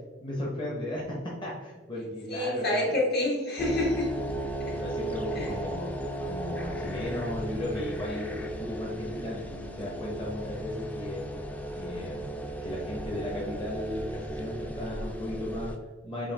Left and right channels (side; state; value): both; normal; correlation 0.50